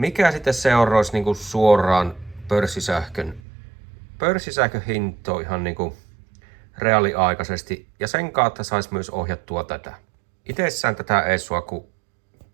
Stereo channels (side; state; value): left; drops out; at 3.4 s